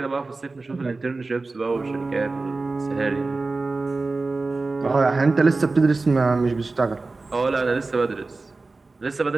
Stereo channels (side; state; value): left; quieter; 3.6 dB